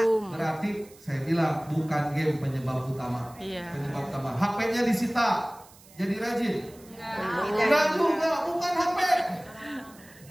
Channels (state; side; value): noise; right; hiss, 24 dB below the sound